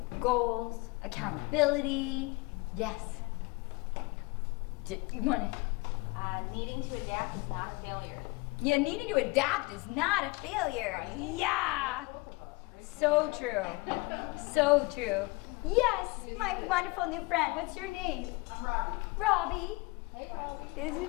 Goals, accountability. Yes. You want to? Needing to adapt is not a failure. Yeah, needing to adapt is not a failure. Yeah. So true. So true. Yes, my wonderful new friend. What's your name? I'm Robbie. Robbie. Hey, Rob. This is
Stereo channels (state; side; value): quieter; right; 24.8 dB